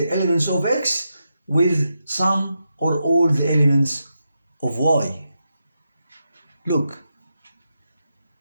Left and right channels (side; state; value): both; inverted; correlation -0.86